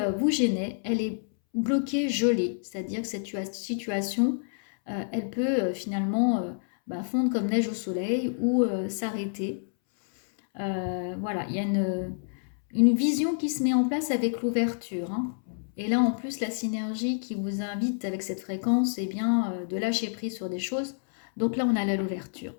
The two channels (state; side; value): silent; right; 59 dB below the other